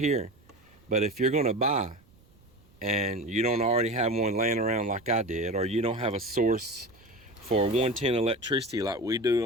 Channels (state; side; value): noise; right; rumble, 29 dB below the sound